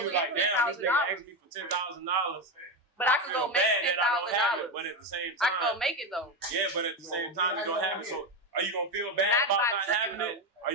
you get like, damn, this nigga $10,000. asked me for $10,000. But I could feel go make bad that I don't have it, $10,000. but at the same I could go time, make it though. yeah, but at the same time, you don't have it. So, are you gonna feel bad Not about by not tricking, having it? Or are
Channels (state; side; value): normal; both; correlation 0.13